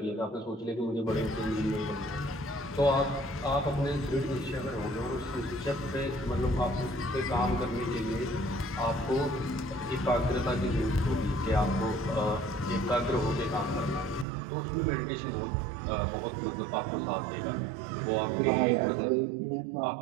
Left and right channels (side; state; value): left; drops out; at 14.2 s